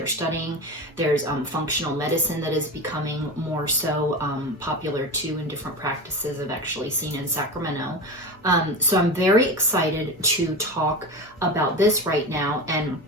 studying. There's functional medicine that is becoming more so popular too in different practices I've actually seen in Sacramento. So I'm very excited to talk about this right now. And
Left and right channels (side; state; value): both; normal; correlation 0.25